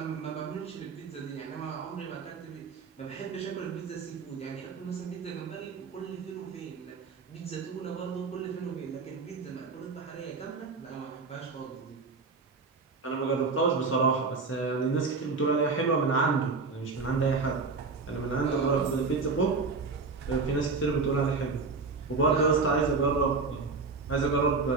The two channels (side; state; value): left; quieter; 4.3 dB